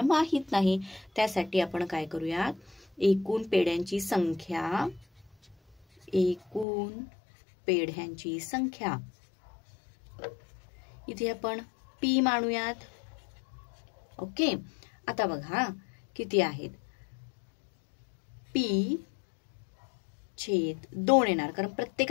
माहित नाही. त्यासाठी आपण काय करूया एकूण पेढ्यांची संख्या इथे आपण p मानूयात. ओके आता बघा किती आहेत p छेद 2 येणार कारण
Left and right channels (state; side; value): drops out; right; at 6.7 s